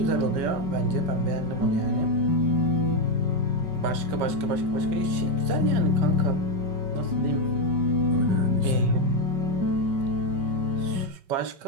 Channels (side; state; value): left; late; 5.2 ms